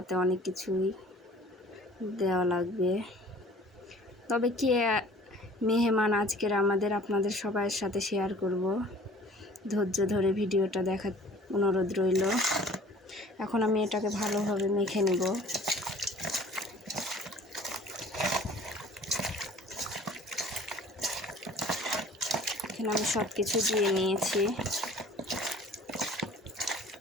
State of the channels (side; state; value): both; normal; correlation 0.49